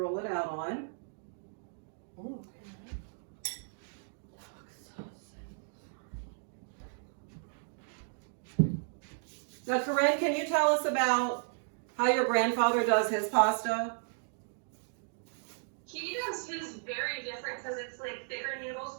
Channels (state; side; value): silent; left; digital silence